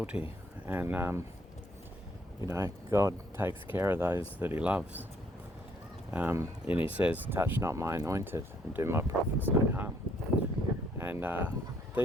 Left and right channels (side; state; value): both; normal; correlation 0.67